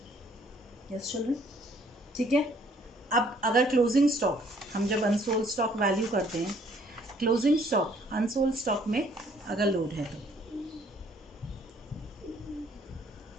Yes children, ठीक है. अब अगर क्लोजिंग स्टॉक, हम जब अनसोल्ड स्टॉक वैल्यू करते हैं, क्लोजिंग स्टॉक अनसोल्ड स्टॉक में अगर लोड है तो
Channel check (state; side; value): normal; both; correlation 0.62